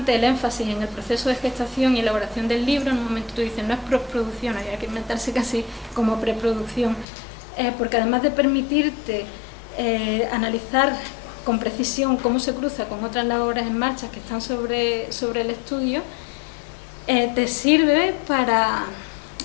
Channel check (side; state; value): right; drops out; at 7.1 s